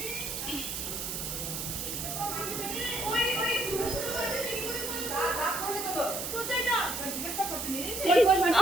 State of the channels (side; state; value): right; noise; hiss, 4 dB below the sound